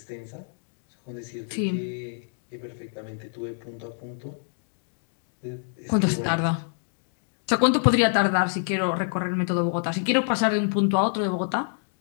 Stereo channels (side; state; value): right; silent; digital silence